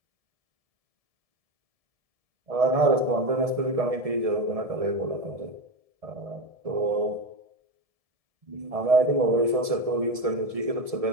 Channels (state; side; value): late; left; 1.7 ms